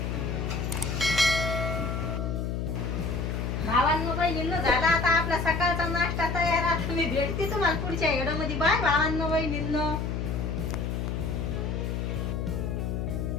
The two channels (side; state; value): left; noise; hum, 2 dB below the sound